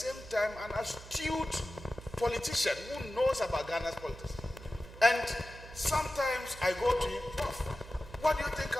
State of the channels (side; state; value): right; noise; hum, 16 dB below the sound